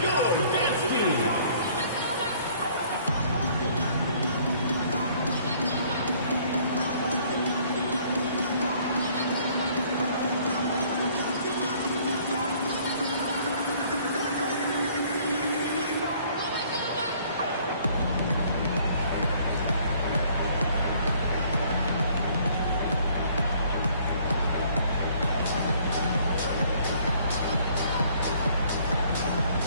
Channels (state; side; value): inverted; both; correlation -0.60